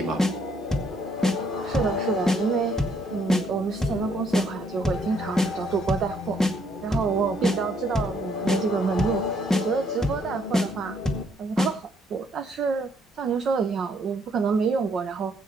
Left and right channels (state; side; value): normal; both; correlation 0.69